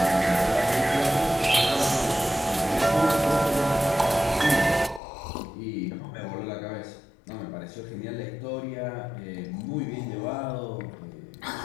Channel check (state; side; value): drops out; right; at 5.0 s